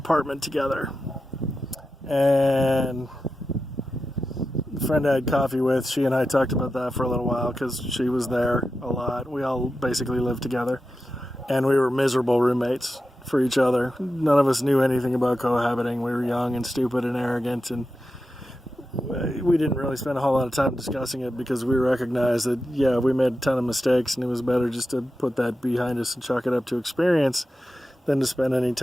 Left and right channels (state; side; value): normal; both; correlation 0.91